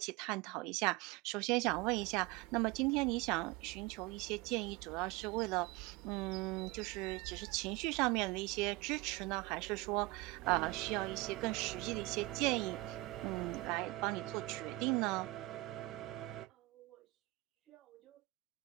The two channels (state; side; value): quieter; left; 21.4 dB